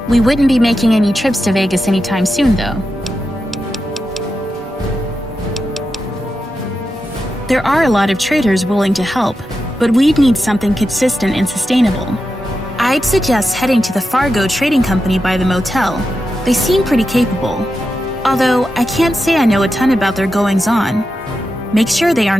We wouldn't be making any trips to Vegas anytime soon, though. There are a lot of traders willing to help, but we'd need something consistent and sustainable. I'd suggest heading to the Fargo Trading Company by the motel. They seem pretty capable. Although, I can't say I know a ton about their goings-on. Make sure they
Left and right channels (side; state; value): both; normal; correlation 0.89